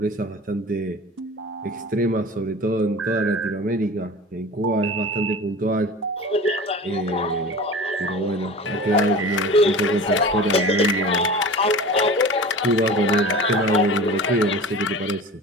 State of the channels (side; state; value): both; normal; correlation 0.36